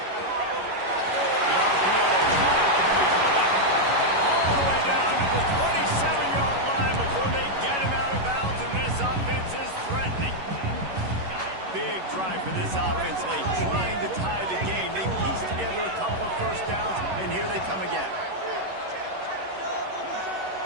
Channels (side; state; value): left; late; 11 ms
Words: The RPO, all the way down to the 27-yard line before they get him out of bounds, and this offense is threatening. Big drive for this offense late, trying to tie the game. They pieced together a couple of first downs, and here they come again.